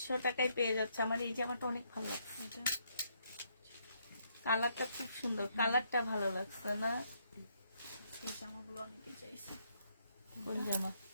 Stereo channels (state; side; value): inverted; both; correlation -0.73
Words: টাকায় পেয়ে যাচ্ছে। আমার এই জামাটা অনেক ভালো লাগছে, এটা কালারটা খুব সুন্দর, কালারটা ভালো লাগছে না? এই জামাগুলো অনেকে চাইছে। কোন জামা?